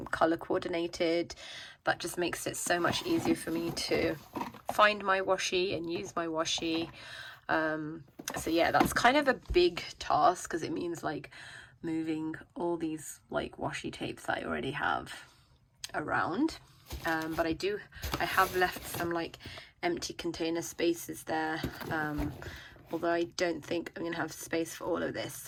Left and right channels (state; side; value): identical; both; correlation 1.00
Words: color coordinated. That just makes it so much easier for me to find my washi and use my washi. So yeah, that's kind of a big task because it means like moving all these like washi tapes that I already have around. But I have left some like empty container spaces there, although I don't think I'm gonna have space for all of this,